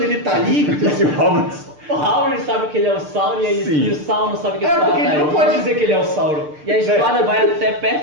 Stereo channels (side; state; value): left; late; 6.7 ms